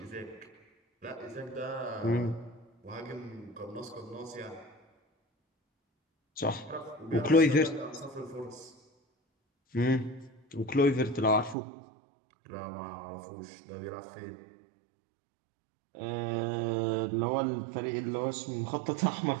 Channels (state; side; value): drops out; left; at 11.6 s